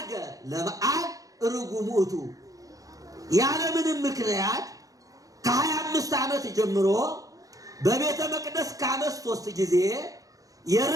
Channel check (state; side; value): late; left; 0.17 ms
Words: ለበዓል ርጉም ውእቱ። ያለምንም ምክንያት ከ25 ዓመት ጀምሮ በቤተ መቅደስ ከዓመት 3 ጊዜ